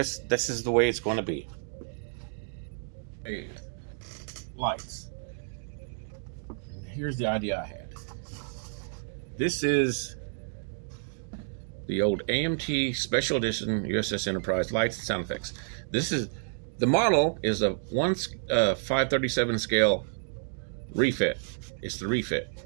is the way it's going to be. Hey, lights. Here's the idea I had. This is the old AMT Special Edition USS Enterprise lights and sound effects. The model is a 537 scale refit. It's the refit.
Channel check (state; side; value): silent; left; digital silence